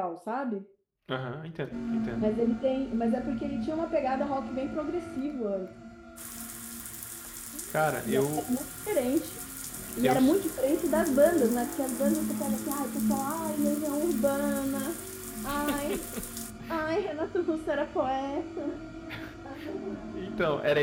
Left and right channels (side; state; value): both; identical; correlation 1.00